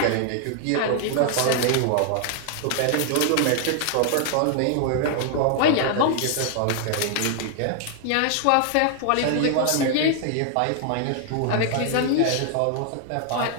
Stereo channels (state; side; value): different; both; correlation 0.00